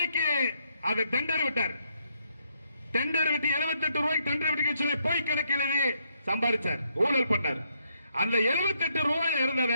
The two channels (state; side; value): inverted; both; correlation -0.75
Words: அதை டெண்டர் விட்டார். டெண்டர் விட்டு 78 ரூபாய்க்கு டெண்டர் விட்டு சொல்லி போய் கணக்கில் சம்பாதிச்சார், ஊழல் பண்ணார். அந்த 78 ரூபாய் இருந்தத